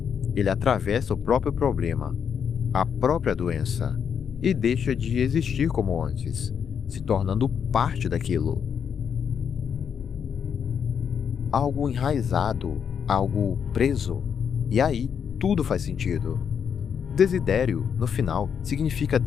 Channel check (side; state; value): right; quieter; 7.4 dB